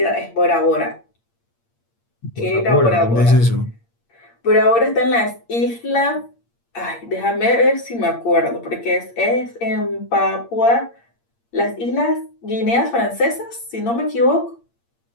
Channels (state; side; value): late; right; 8.6 ms